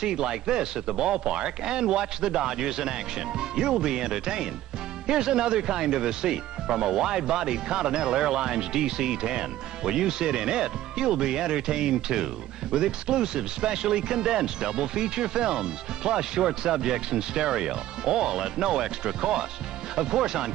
like this at the ballpark and watch the Dodgers in action. You'll be entertained. Here's another kind of a seat from a wide-bodied Continental Airlines DC-10. When you sit in it, you'll be entertained too, with exclusive specially condensed double feature films, plus short subjects in stereo, all at no extra cost. Of course, on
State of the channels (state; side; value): quieter; left; 13.9 dB